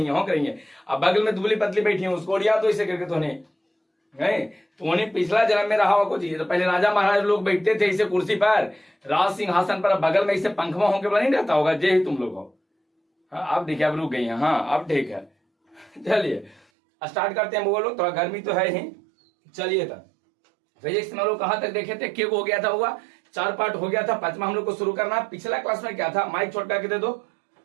है। अब बगल में दुबली पतली बैठी है, उसको उड़िया तो इसे करके तो पिछला जन्म में रहा हुआ कुछ। तो पहले राजा महाराज लोग बैठते थे इसे कुर्सी पर, राज सिंहासन पर, बगल में इसे पंखवा होंके बना नहीं रहता होगा। जे ही तुम लोग हो। हाँ अब देखिए, अब रुक गई है। हाँ अब ठीक है, चलिए स्टार्ट करते हैं। वो लोग थोड़ा गर्मी तो है ही। चलिए तब फिजिक्स में लोग कहाँ तक देखे थे? क्या हो गया था? हुआ 4 पार्ट हो गया था। 5वां हम लोग को शुरू करना। पिछला क्लास में क्या था? माइक छोड़ करके दे दो।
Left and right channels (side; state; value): left; drops out; at 16.7 s